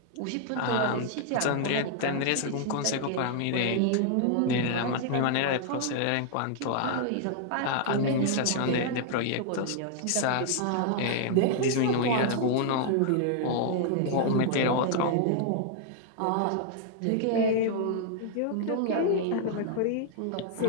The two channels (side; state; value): both; different; correlation 0.00